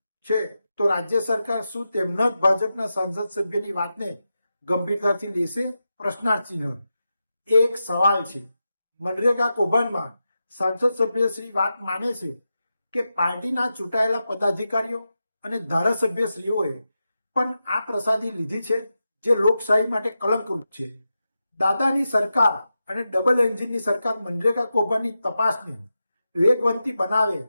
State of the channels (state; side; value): inverted; both; correlation -0.90